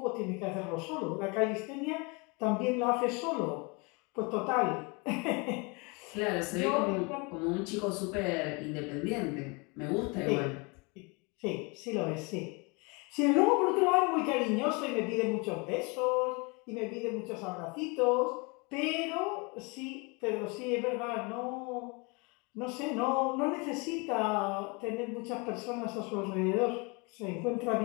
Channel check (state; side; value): quieter; right; 29.6 dB